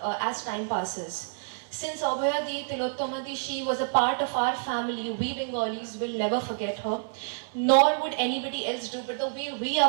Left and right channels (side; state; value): left; silent; 59 dB below the other